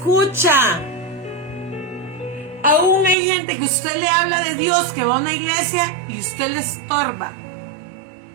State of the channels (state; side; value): drops out; left; at 3.2 s